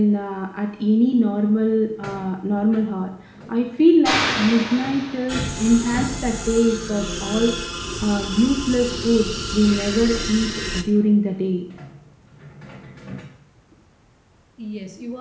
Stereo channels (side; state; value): both; identical; correlation 1.00